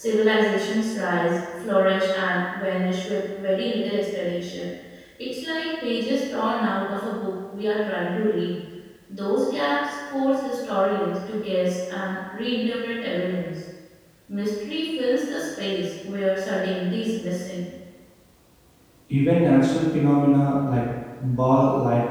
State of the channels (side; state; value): both; identical; correlation 1.00